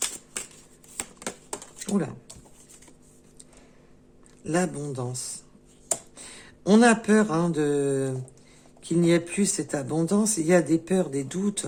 Oula. L'abondance. On a peur hein, qu'il n'y ait plus cette abondance. Il y a des peurs, des doutes.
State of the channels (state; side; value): identical; both; correlation 1.00